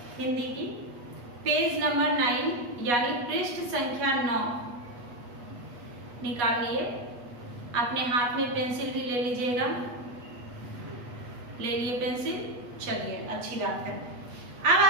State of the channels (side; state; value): left; late; 8.3 ms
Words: हिंदी की, पेज नंबर 9 यानी पृष्ठ संख्या 9 निकाल लिए। अपने हाथ में पेंसिल भी ले लीजिएगा। ले लिए पेंसिल? चलिए, अच्छी बात है। अब